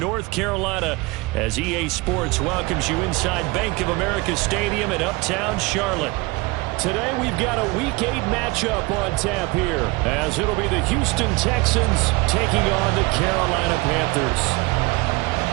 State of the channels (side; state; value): left; quieter; 23.9 dB